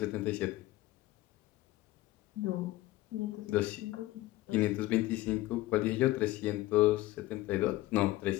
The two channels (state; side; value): quieter; right; 17.4 dB